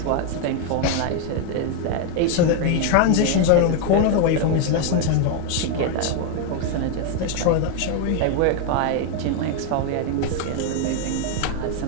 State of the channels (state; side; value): different; both; correlation 0.01